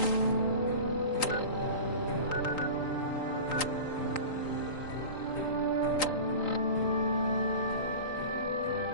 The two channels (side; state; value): right; late; 3.9 ms